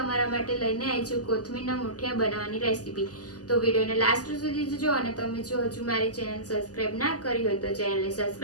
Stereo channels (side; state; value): right; late; 0.67 ms